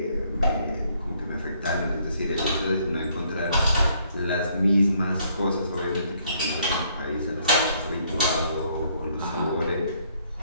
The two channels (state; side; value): inverted; both; correlation -0.66